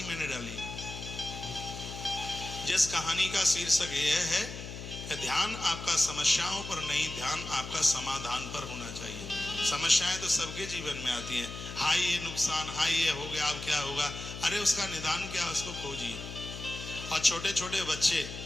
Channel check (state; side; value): noise; left; hum, 9 dB below the sound